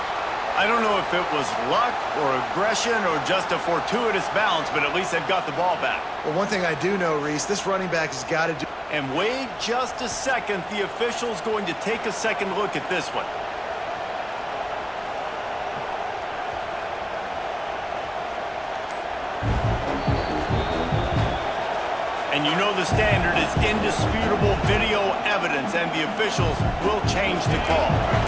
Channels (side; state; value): both; identical; correlation 1.00